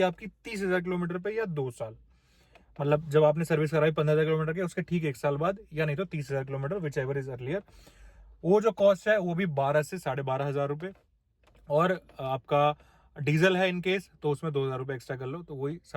आपकी 30,000 किलोमीटर पे या 2 साल, मतलब जब आपने सर्विस कराई 15,000 किलोमीटर के उसके ठीक 1 साल बाद, या नहीं तो 30,000 kilometre, which ever is earlier. वो जो कॉस्ट है वो भी 12 से 12,500 रुपए। और आपका डीजल है इनकेस तो उसमें 2,000 रुपए एक्स्ट्रा कर लो, तो वही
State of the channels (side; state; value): both; identical; correlation 1.00